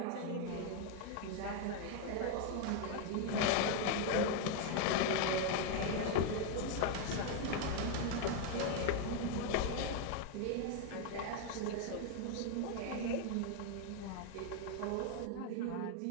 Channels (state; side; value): different; both; correlation 0.01